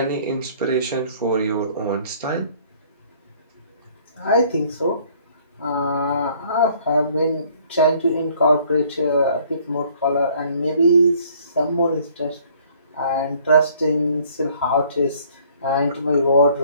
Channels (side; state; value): both; inverted; correlation -0.58